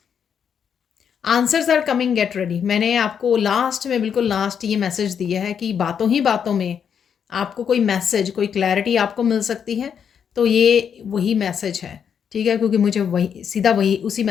Answers are coming, get ready. मैंने आपको लास्ट में, बिल्कुल लास्ट ये मैसेज दिया है कि बातों ही बातों में आपको कोई मैसेज, कोई क्लैरिटी आपको मिल सकती है। तो ये वही मैसेज है, ठीक है, क्योंकि मुझे वही सीधा वही उसी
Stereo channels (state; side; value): quieter; right; 7.6 dB